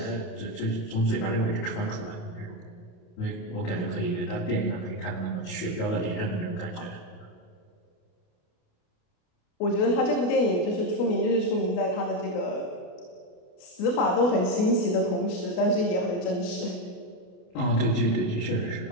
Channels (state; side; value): late; right; 27 ms